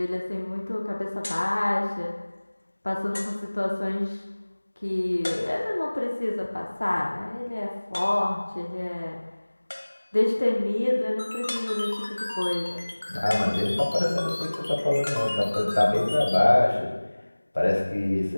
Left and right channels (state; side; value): inverted; both; correlation -1.00